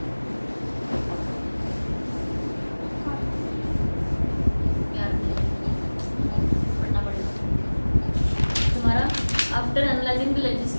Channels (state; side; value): inverted; both; correlation -1.00